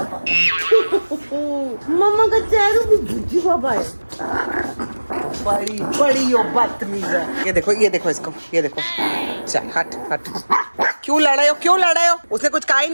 मम्मा का चेहरा भी भुज्जी पापा है। बड़ी बड़ी यो बदतमीज है। ये देखो इसको, ये देखो। चल हट। क्यों लड़ाई हो? उसने कुछ कहा ही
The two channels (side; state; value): both; inverted; correlation -1.00